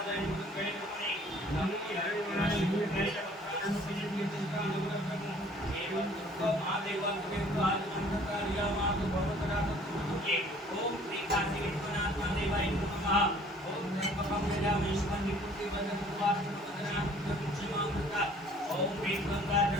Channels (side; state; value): both; normal; correlation 0.55